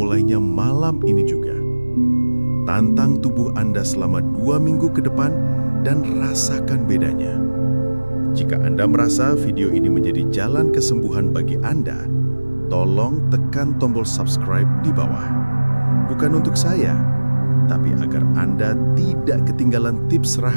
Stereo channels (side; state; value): both; inverted; correlation -1.00